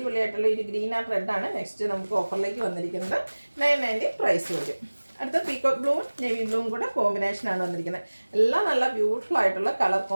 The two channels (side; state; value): both; inverted; correlation -1.00